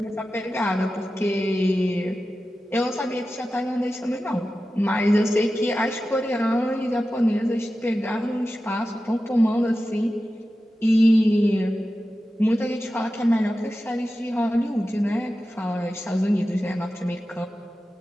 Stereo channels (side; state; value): both; normal; correlation 0.93